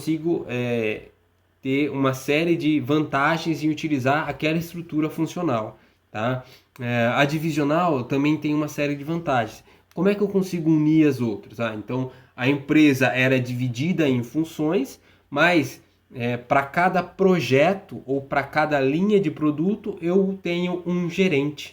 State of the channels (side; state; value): both; identical; correlation 1.00